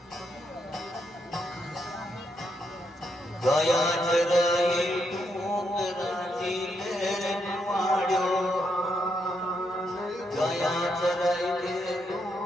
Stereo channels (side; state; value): both; normal; correlation 0.79